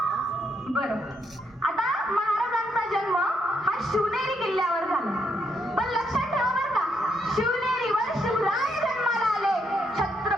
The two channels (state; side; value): normal; both; correlation 0.76